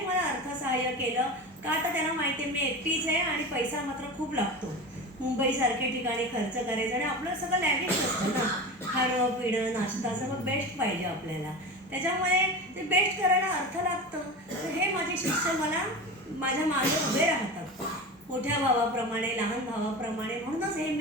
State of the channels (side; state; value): both; normal; correlation 0.28